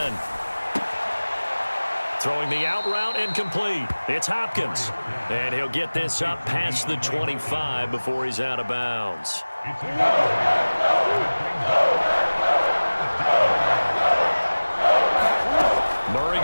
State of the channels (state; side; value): inverted; both; correlation -1.00